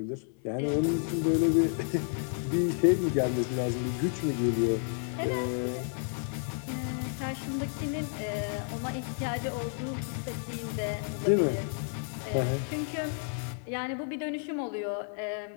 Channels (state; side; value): silent; right; 57 dB below the other